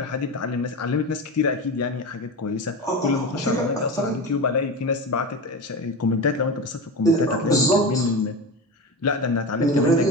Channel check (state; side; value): normal; both; correlation 0.24